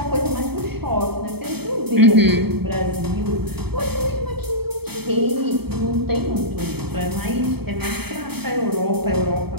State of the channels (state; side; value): late; left; 0.97 ms